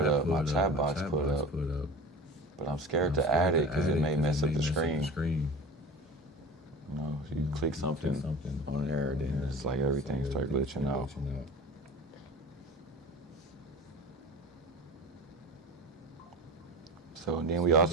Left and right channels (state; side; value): normal; both; correlation 0.35